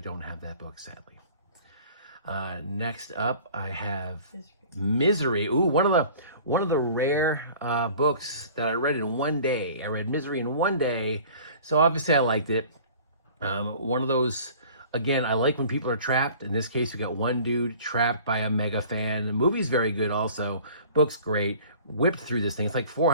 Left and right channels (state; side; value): inverted; both; correlation -0.47